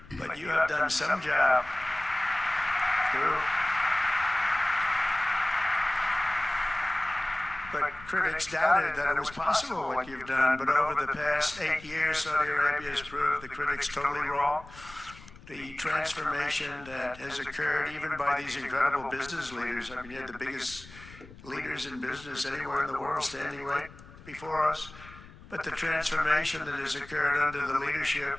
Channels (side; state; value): left; noise; rumble, 19 dB below the sound